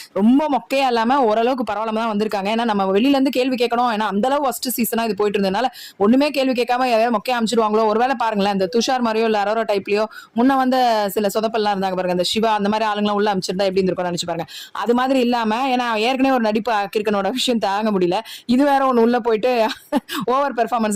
ரொம்ப மொக்கையா இல்லாமல் ஓரளவுக்கு பரவாயில்லாம தான் வந்திருக்காங்க. ஏன்னா நம்ம வெளியிலேருந்து கேள்வி கேட்கணும். ஏன்னா அந்தளவு ஃபர்ஸ்ட் சீசனாக இது போயிட்டு இருந்ததுனால ஒன்றுமே கேள்வி கேட்காம ஏதாவது மொக்கையா அமைச்சிருவாங்களோ. ஒருவேளை பாருங்களேன், இந்த துஷார் மாதிரியோ இல்லை அரோரா டைப்லையோ முன்ன வந்து சில சொதப்பெல்லாம் இருந்தாங்க பாருங்க, இந்த சிவா அந்த மாதிரி ஆளுங்களாம் உள்ள அமைச்சிருந்தா எப்படி இருந்திருக்கும்னு நினைச்சு பாருங்க. அது மாதிரி இல்லாம, ஏன்னா ஏற்கனவே ஒரு நடிப்பு கிரிக்கனோட விஷயம் தாங்க முடியல, இது வேற ஒன்று உள்ள போயிட்டு ஓவர்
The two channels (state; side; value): identical; both; correlation 1.00